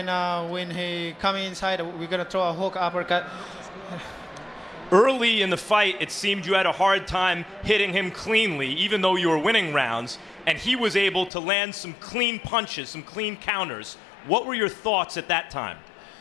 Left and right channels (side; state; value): right; drops out; at 11.3 s